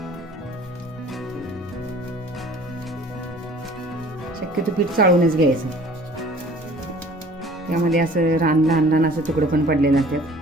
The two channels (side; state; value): both; normal; correlation 0.50